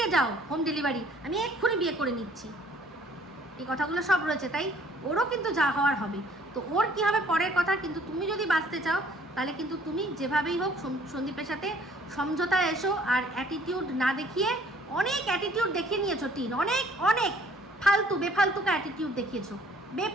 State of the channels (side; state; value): both; normal; correlation 0.58